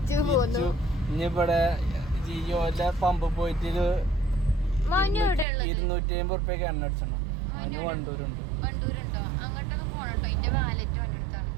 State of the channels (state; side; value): drops out; left; at 5.5 s